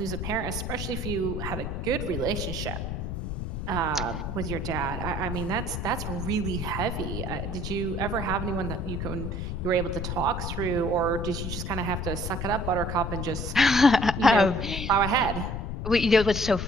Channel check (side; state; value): left; noise; rumble, 4 dB below the sound